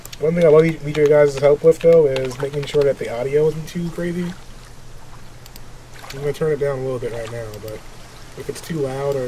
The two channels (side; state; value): both; identical; correlation 1.00